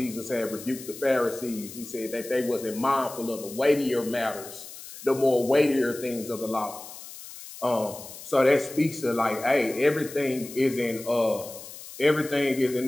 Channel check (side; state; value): left; noise; hiss, 14 dB below the sound